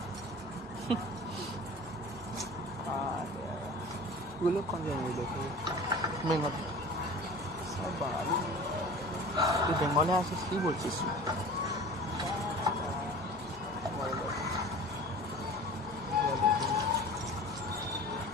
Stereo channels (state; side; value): normal; both; correlation 0.39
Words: वो लोग कौन जाएंगे देखो बंगाली सब बंगाली ये बंगाली আসিস কি বলছিস